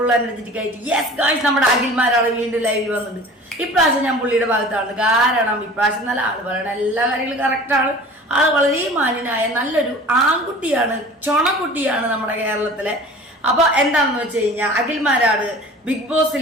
എനർജറ്റിക് ആയിട്ട് യെസ് ഗൈസ് നമ്മുടെ അഖിൽമാരാണ് വീണ്ടും ലൈവിൽ വന്നിട്ടുണ്ട്. ഇപ്രാവശ്യം ഞാൻ പുള്ളിയുടെ ഭാഗത്താണ്. കാരണം ഇപ്രാവശ്യം നല്ല ആള് പറയണ എല്ലാ കാര്യങ്ങളും കറക്റ്റാണ്. ആള് വളരെ മാന്യനായ നല്ലൊരു ആൺകുട്ടിയാണ്, ചൊണക്കുട്ടിയാണ് നമ്മുടെ കേരളത്തിലെ. അപ്പൊ എന്താണെന്ന് വെച്ച് കഴിഞ്ഞാൽ അഖിൽമാരാണ് ബിഗ്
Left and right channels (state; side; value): normal; both; correlation 0.42